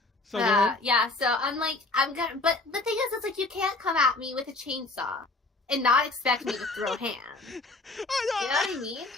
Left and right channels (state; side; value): quieter; right; 3.3 dB